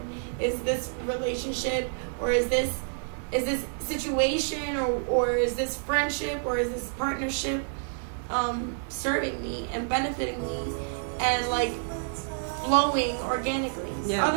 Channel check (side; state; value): left; silent; 59 dB below the other